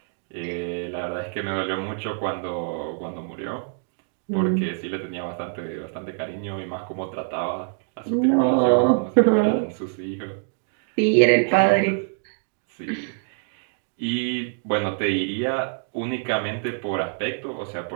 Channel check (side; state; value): left; silent; 57 dB below the other